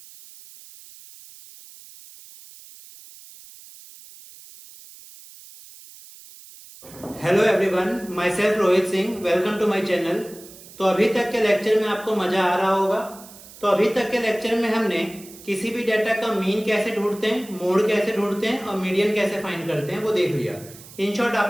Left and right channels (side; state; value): right; noise; hiss, 19 dB below the sound